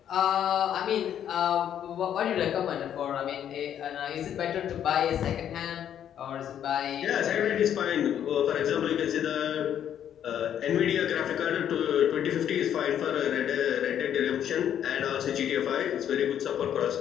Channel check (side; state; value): right; quieter; 9.8 dB